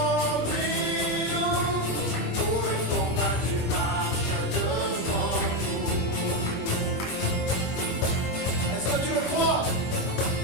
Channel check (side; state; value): right; late; 21 ms